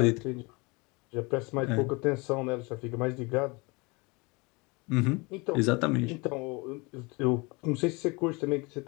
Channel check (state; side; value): quieter; right; 27.2 dB